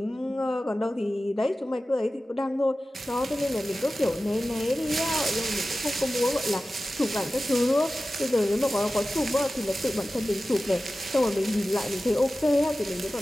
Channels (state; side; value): normal; both; correlation 0.95